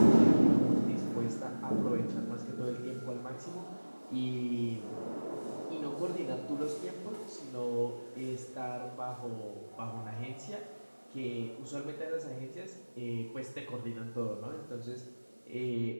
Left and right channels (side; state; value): both; inverted; correlation -1.00